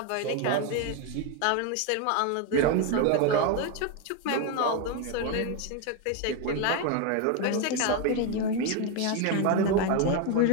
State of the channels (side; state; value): both; different; correlation 0.02